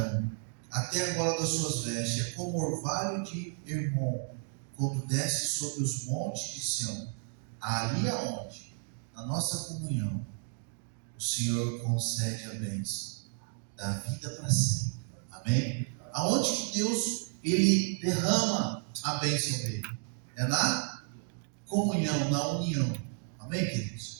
até a gola das suas vestes. É como orvalho de Hermon, quando desce sobre os montes de Sião. Ali aonde, na nossa comunhão, o Senhor concede a bênção da vida para sempre. Amém? Aonde que Deus ele derrama a bênção dele? É na comunhão, na união. Amém,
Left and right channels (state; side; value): silent; left; 56 dB below the other